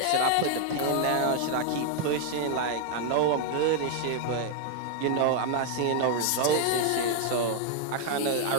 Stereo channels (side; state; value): both; different; correlation 0.00